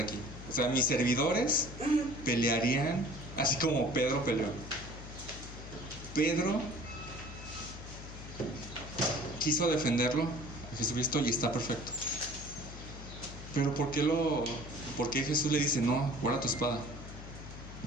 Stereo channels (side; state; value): left; noise; hum, 12 dB below the sound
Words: aquí. O sea, mis servidores pelearían así como Pedro peleó. Pedro quiso defenderlo a Jesucristo y está perfecto. Pero ¿por qué Jesús le dice, no, guarda tu espada?